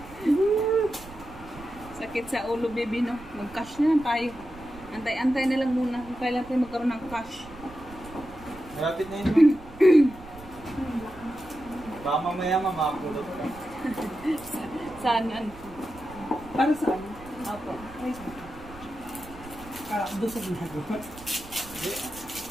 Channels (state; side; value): noise; right; rumble, 18 dB below the sound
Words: Sakit sa ulo, baby, no? Mag-cash na lang tayo. Antay-antay na lang muna kung kailan tayo magkaroon ng cash. Malapit na yun. Baka mamaya mamapulot ka. Saan? Para saan? Opo. Doon sa ginagawa.